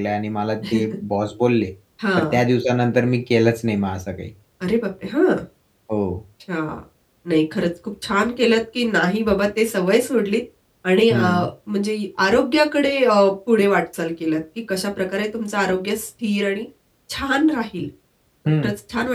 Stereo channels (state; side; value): identical; both; correlation 1.00